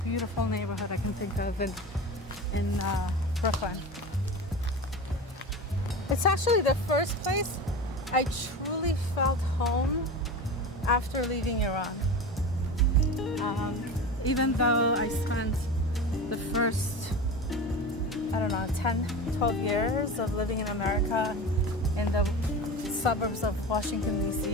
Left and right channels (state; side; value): normal; both; correlation 0.29